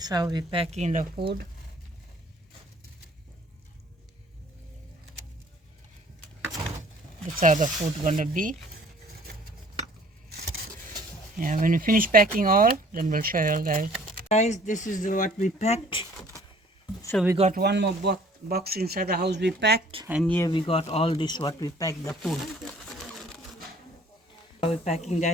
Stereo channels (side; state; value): both; normal; correlation 0.55